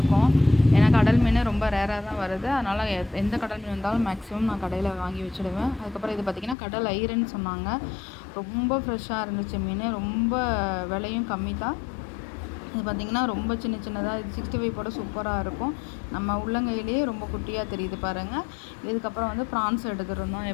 ஏன்னா கடல் மீன் ரொம்ப ரேராக தான் வருது. அதனால் எந்த கடல் மீன் வந்தாலும் மேக்ஸிமம் நான் கடையில் வாங்கி வச்சுடுவேன். அதுக்கப்புறம் இது பார்த்திங்கன்னா கடல் ஐரன்னு சொன்னாங்க. ரொம்ப ஃப்ரெஷ்ஷாக இருந்துச்சு மீன். ரொம்ப விலையும் கம்மி தான். இது பார்த்திங்கன்னா ரொம்ப சின்ன சின்னதாக, இது 65 போட சூப்பராக இருக்கும். நம்ம உள்ளங்கையிலேயே ரொம்ப குட்டியாக தெரியுது பாருங்கள். இதுக்கப்புறம் வந்து ப்ரான்ஸ் எடுத்துருந்தோம்.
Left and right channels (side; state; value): right; drops out; at 6.6 s